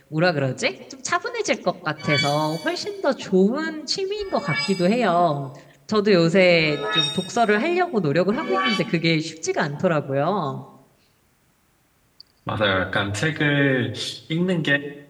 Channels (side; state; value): both; identical; correlation 1.00